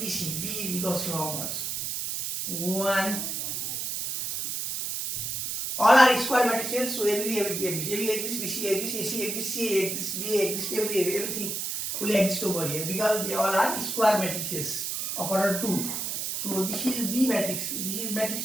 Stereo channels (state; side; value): noise; right; hiss, 3 dB below the sound